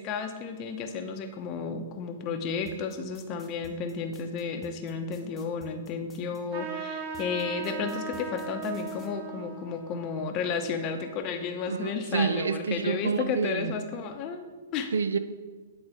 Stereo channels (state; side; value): normal; both; correlation -0.19